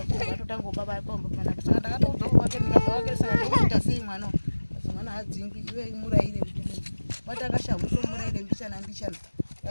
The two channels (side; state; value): both; inverted; correlation -1.00